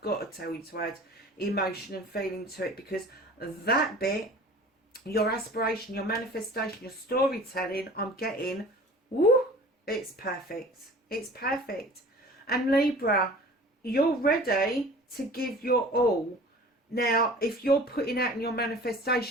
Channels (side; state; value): both; normal; correlation 0.43